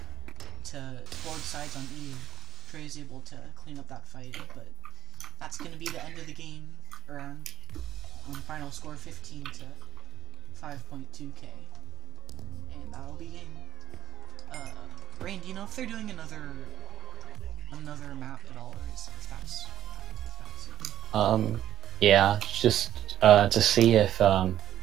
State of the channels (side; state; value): left; quieter; 11.5 dB